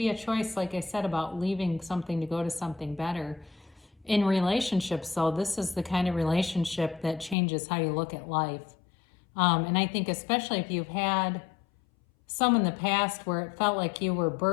a choice, like I said, about leaving something to go to something better. In relationships, though, this is the kind of relationship that changes how you look at life. And I think especially if you've had some in the past where it felt like you were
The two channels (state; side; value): drops out; right; at 7.4 s